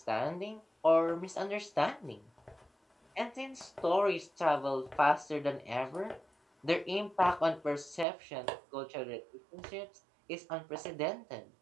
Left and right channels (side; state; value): left; drops out; at 8.1 s